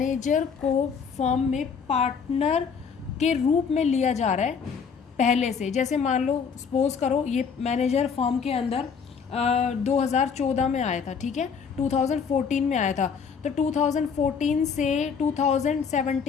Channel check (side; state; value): right; quieter; 6.2 dB